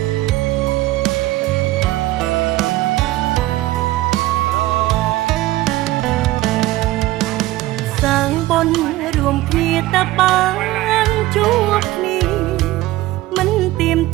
រួមគ្នាតែបានជួបគ្នាមិនទៀម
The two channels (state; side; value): quieter; left; 17.2 dB